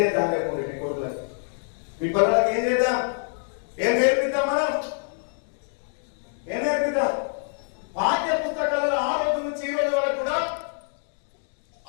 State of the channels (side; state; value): right; silent; digital silence